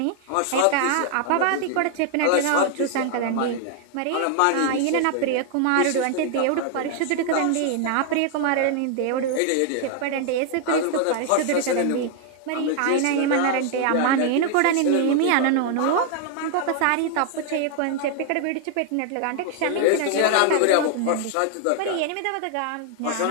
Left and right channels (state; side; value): different; both; correlation 0.00